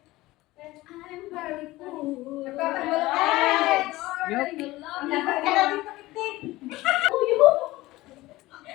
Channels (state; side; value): quieter; right; 18.6 dB